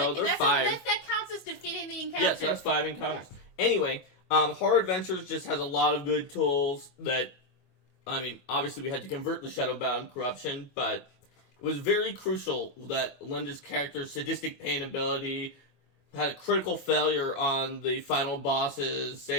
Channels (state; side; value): late; right; 24 ms